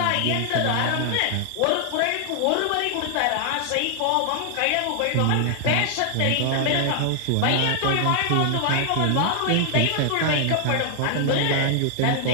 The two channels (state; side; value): different; both; correlation 0.00